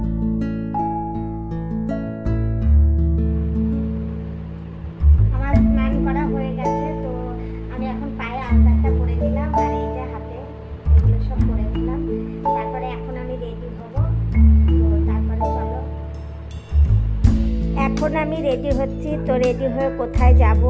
আমার স্নান করা হয়ে গেছে, তো আমি এখন পায়ে আলতাটা করে দিলাম আর এই যে হাতে এগুলো সব করে দিলাম। তারপরে এখন আমি রেডি হব। তো তারপরে চলো, এখন আমি রেডি হচ্ছি। তো রেডি হয়ে কোথায় যাব,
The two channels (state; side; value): identical; both; correlation 1.00